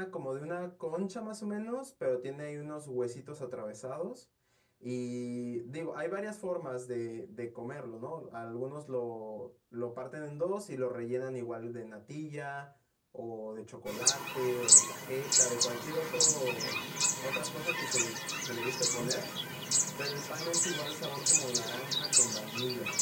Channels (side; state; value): both; identical; correlation 1.00